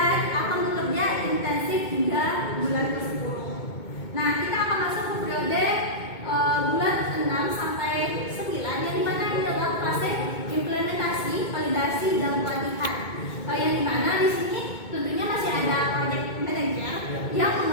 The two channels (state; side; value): late; right; 2.2 ms